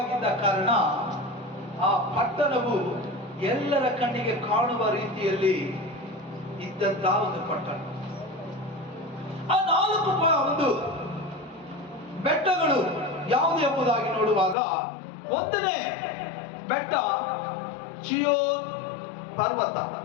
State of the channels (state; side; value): drops out; right; at 14.6 s